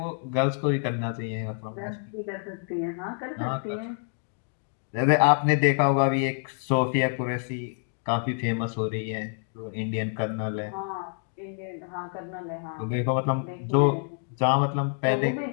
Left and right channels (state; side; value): silent; right; 60 dB below the other